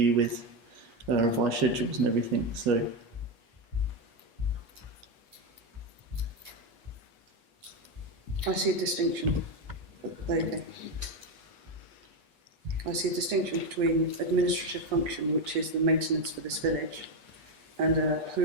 with revised schedules and everything. So I see a distinction. There you go. I see a distinction between administrative function, which is the maintenance for this village, and a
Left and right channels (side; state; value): left; late; 8.3 ms